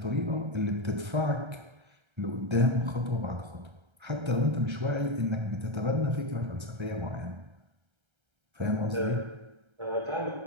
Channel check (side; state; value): left; late; 1.3 ms